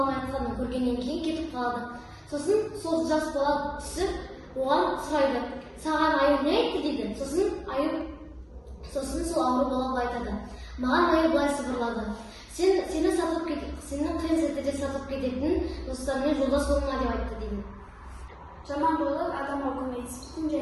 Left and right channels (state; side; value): identical; both; correlation 1.00